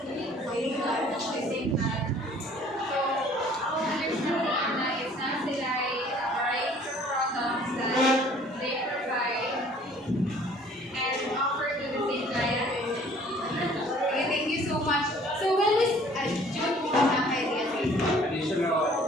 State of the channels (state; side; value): normal; both; correlation 0.54